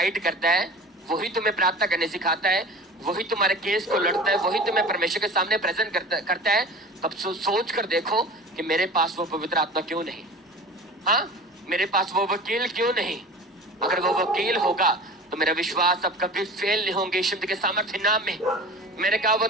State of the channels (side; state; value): both; normal; correlation 0.37